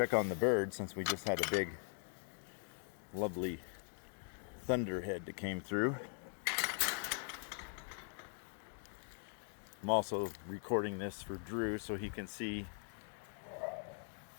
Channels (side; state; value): right; silent; 50 dB below the other